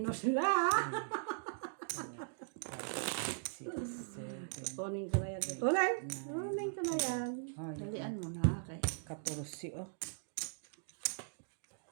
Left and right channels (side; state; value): left; silent; digital silence